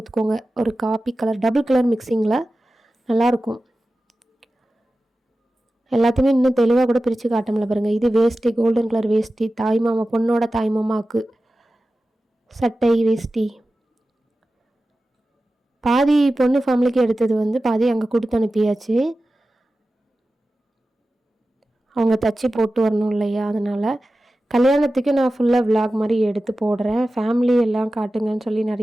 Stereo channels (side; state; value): both; normal; correlation 0.95